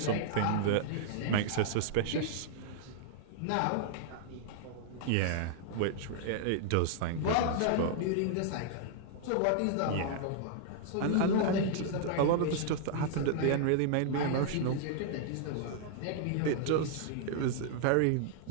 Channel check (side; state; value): both; different; correlation -0.01